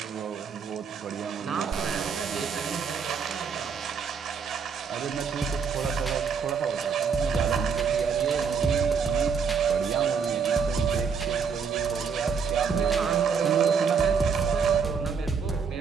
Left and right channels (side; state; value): left; quieter; 6.1 dB